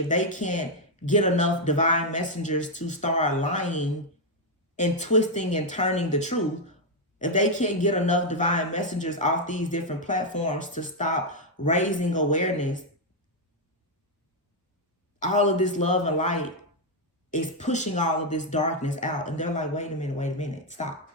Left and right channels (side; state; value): both; normal; correlation 0.01